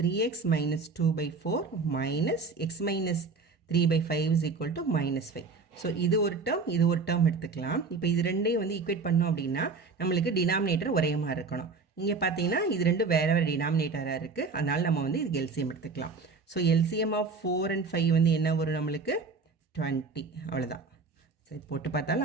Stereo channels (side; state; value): left; quieter; 4.4 dB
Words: minus 2/4 minus x minus 3/5 is equal to -5. So இது ஒரு டேர்ம், இது ஒரு டேர்ம் எடுத்துக்கலாம். இப்போ இது ரெண்டையும் வந்து ஈக்குவேட் பண்ணோம் அப்படின்னா நம்மளுக்கு டினாமினேட்டர் ஒரே மாதிரி இருக்கணும். இங்கே பார்த்தீங்கன்னா இது ரெண்டும் வேறு வேறு டினாமினேட்டராக இருக்குது, அதனால் நம்ம வந்து இதுக்கு எல்சிஎம் எடுத்துக்கலாம். ஸோ எல்சிஎம் ஆஃப் 4 and 5 வந்து என்ன வரும், நம்மளுக்கு 20. அவ்வளோதான். சரி போட்டு